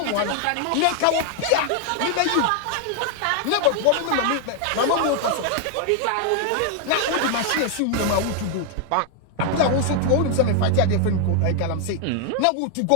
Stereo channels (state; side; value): different; both; correlation 0.00